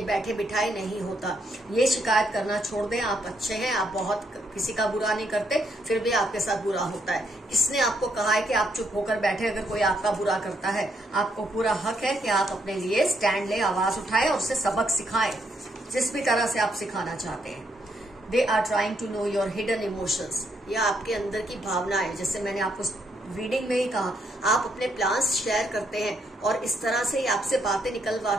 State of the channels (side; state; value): both; normal; correlation 0.75